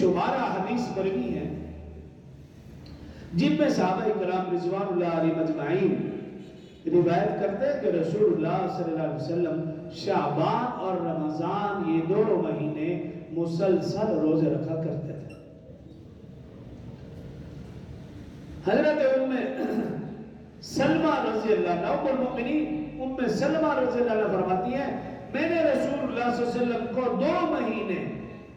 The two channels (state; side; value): identical; both; correlation 1.00